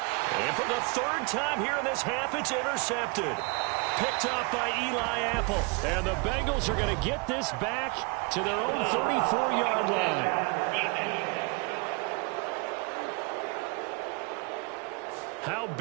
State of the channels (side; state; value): left; quieter; 30.2 dB